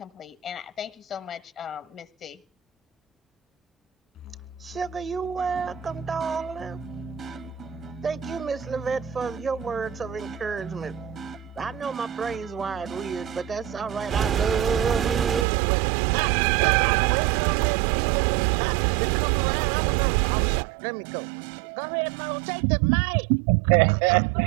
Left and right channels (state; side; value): drops out; left; at 15.5 s